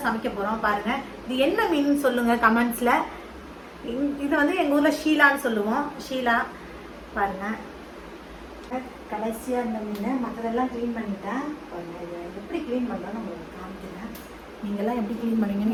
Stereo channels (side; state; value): both; identical; correlation 1.00